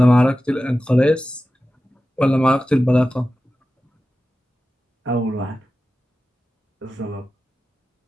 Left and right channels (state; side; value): normal; both; correlation 0.94